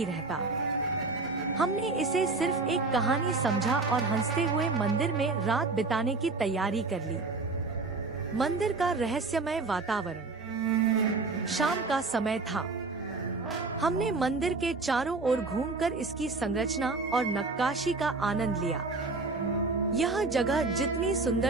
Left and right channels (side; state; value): left; quieter; 3.7 dB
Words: रहता। हमने इसे सिर्फ एक कहानी समझा और हंसते हुए मंदिर में रात बिताने की तैयारी कर ली। मंदिर का रहस्यमय वातावरण। शाम का समय था। हमने मंदिर के चारों ओर घूमकर इसकी संरचना और नक्काशी का आनंद लिया। यह जगह जितनी